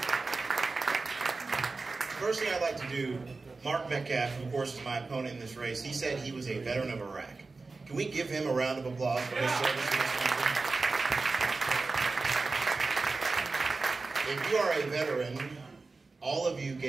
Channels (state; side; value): quieter; left; 3.8 dB